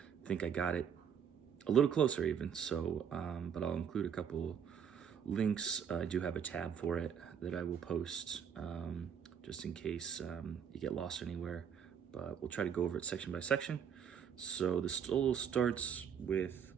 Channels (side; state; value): left; quieter; 7.8 dB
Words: I think I got it a little closer even. So, but I'll include a couple links. I do have a tab for it that I will post just in case you get lost anywhere. But we'll try to go over it section by section. So the solo starts with